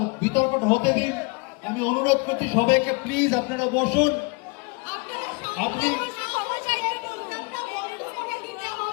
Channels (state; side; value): quieter; right; 29.4 dB